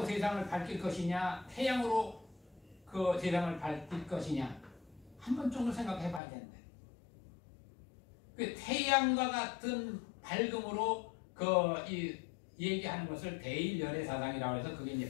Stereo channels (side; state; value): right; drops out; at 6.2 s